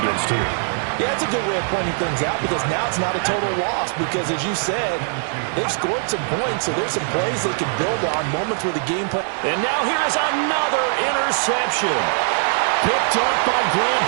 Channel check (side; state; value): left; silent; 62 dB below the other